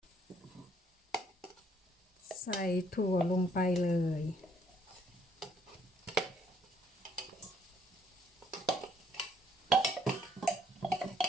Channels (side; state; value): both; normal; correlation 0.67